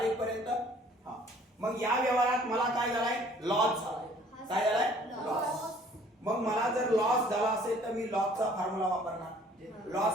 इथपर्यंत? हा. मग या व्यवहारात मला काय झालाय? लॉस झालाय. काय झालाय? लॉस. मग मला जर लॉस झाला असेल तर मी लॉसचा फॉर्म्युला वापरणार.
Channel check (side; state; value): both; normal; correlation 0.56